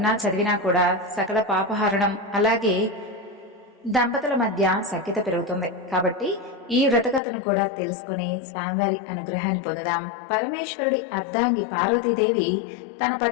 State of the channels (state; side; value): drops out; right; at 7.2 s